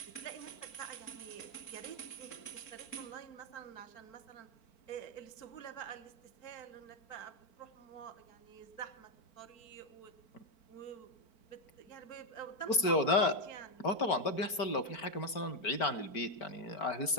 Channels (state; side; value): late; right; 4.5 ms